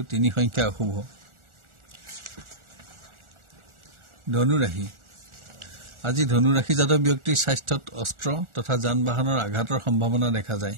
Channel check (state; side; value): late; left; 1.4 ms